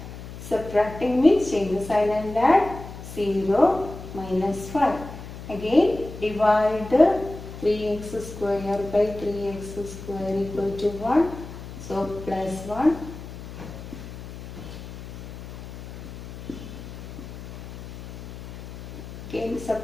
Subtracting means change the sign and add 0 minus 5. Again divide 3x square by 3x square equal to 1. So plus 1. Again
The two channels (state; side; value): noise; left; hum, 12 dB below the sound